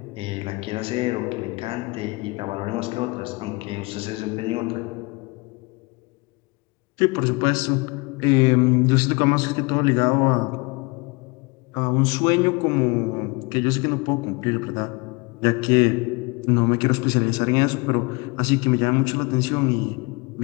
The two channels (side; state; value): right; quieter; 27.3 dB